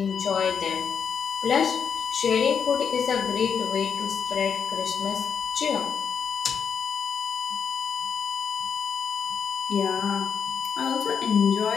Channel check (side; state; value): right; quieter; 6.9 dB